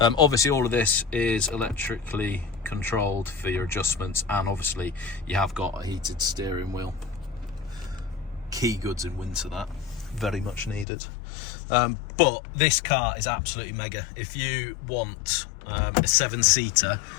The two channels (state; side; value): drops out; right; at 10.9 s